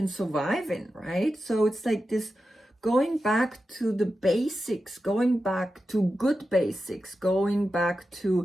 survive in, right? So it's like this going back to the basics, going back to good basics, going back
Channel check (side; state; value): both; normal; correlation 0.91